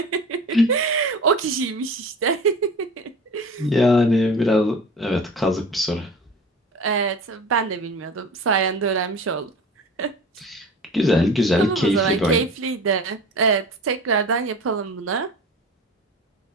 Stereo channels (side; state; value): both; normal; correlation 0.37